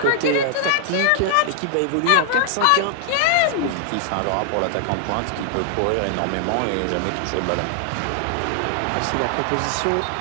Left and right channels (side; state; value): both; different; correlation 0.00